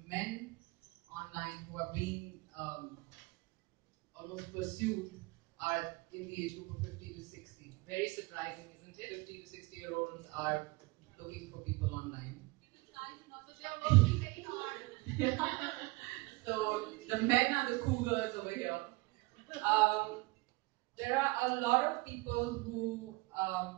men online who are being almost pursued are in the age group of 50 to 60. Very surprising, isn't it? 50 to 60-year-olds are looking for people online. So the men are the cougars over here. There are a lot of people who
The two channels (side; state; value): left; quieter; 23.7 dB